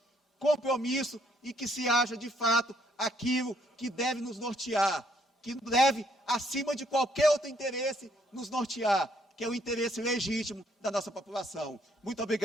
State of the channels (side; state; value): both; normal; correlation 0.69